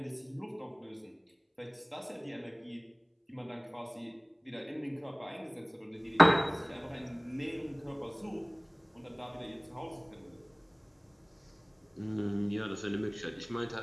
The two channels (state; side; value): identical; both; correlation 1.00